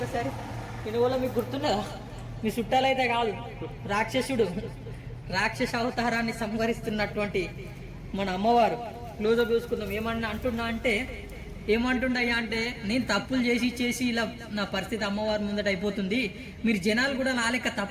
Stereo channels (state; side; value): identical; both; correlation 1.00